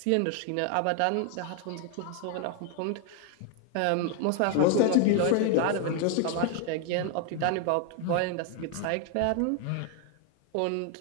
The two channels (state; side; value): different; both; correlation 0.00